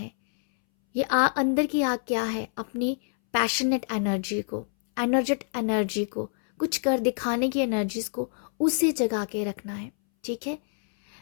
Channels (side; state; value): right; silent; 61 dB below the other